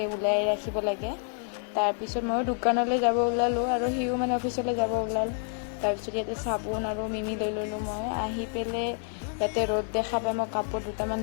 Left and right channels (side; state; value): right; silent; 59 dB below the other